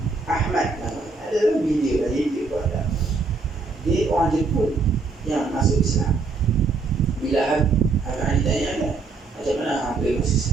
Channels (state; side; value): quieter; left; 4.1 dB